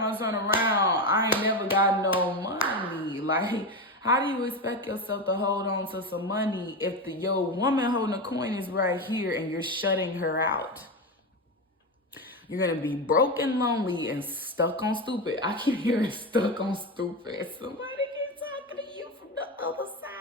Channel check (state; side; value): normal; both; correlation 0.17